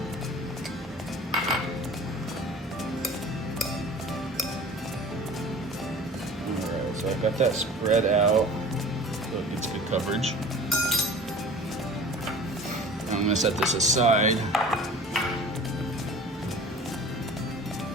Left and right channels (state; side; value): normal; both; correlation 0.42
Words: So I've got that spread out so it gets good coverage. Now I'm going to set this aside.